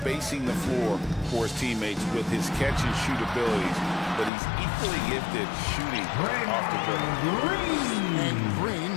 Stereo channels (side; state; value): right; drops out; at 4.3 s